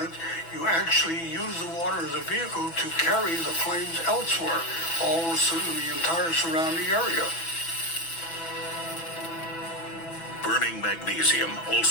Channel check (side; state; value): right; late; 6.0 ms